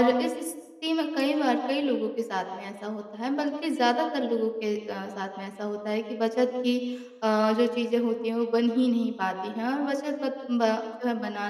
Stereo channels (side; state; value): both; identical; correlation 1.00